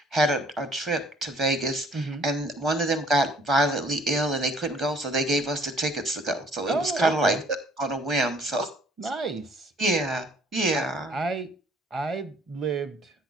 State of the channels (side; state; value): both; normal; correlation 0.59